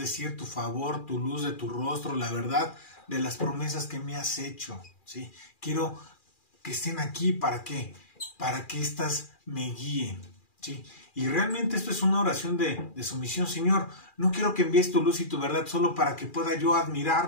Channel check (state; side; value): late; right; 2.4 ms